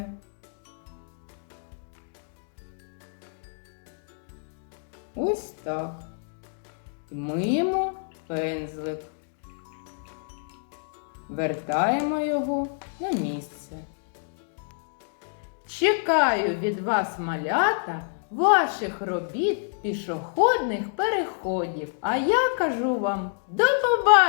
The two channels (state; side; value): silent; right; digital silence